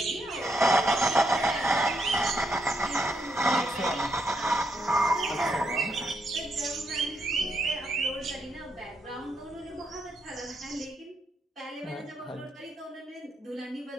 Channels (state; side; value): normal; both; correlation 0.78